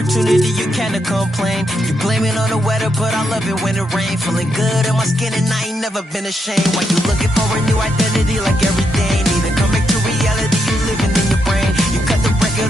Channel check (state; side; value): normal; both; correlation 0.80